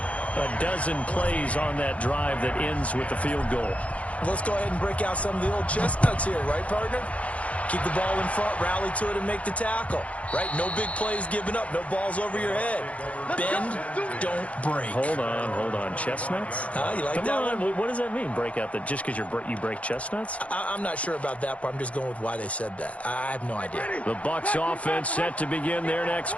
dozen plays on that drive that ends with the field goal. Let's go ahead and break out some of the old chestnuts here, right, partner? Keep the ball in front, rally to it, and make the tackle. Right? No big plays given up. No balls over your head. Bend, don't break. Hold on. Chestnuts? You like Come that on. one? What does that mean, break out? Just because you break chestnuts? I'm not sure about that, but I'm just going with why they said that. I have no idea. The Bucs offense set to begin their next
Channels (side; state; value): right; late; 0.065 ms